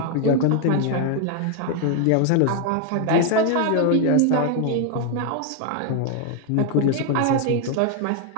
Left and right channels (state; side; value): different; both; correlation 0.00